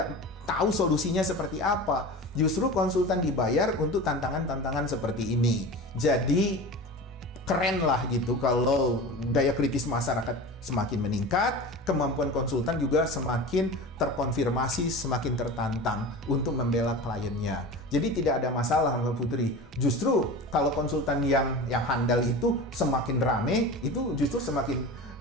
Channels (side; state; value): both; normal; correlation 0.32